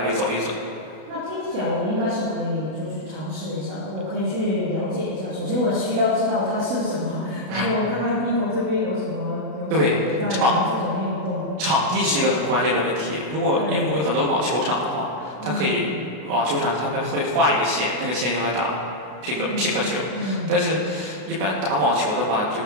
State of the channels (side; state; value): left; late; 32 ms